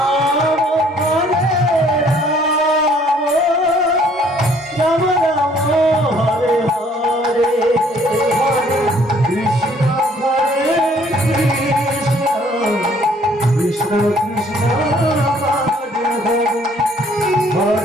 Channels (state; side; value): normal; both; correlation 0.60